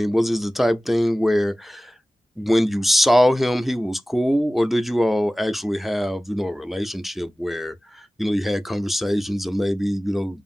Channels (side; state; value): both; normal; correlation 0.97